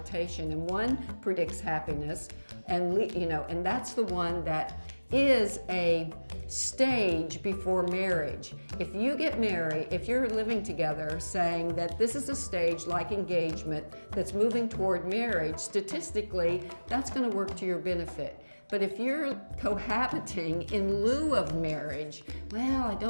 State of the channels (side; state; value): both; inverted; correlation -1.00